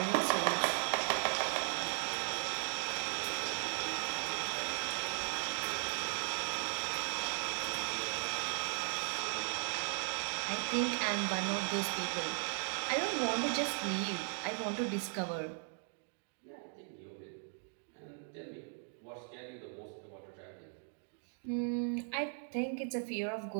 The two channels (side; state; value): left; silent; 53 dB below the other